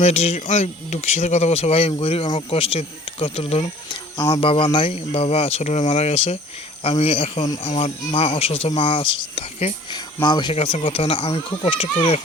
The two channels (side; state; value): both; normal; correlation 0.50